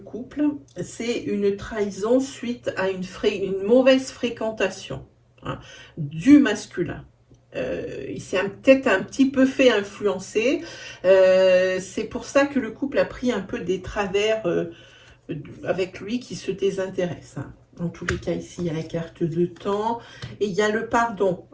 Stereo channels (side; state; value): both; identical; correlation 1.00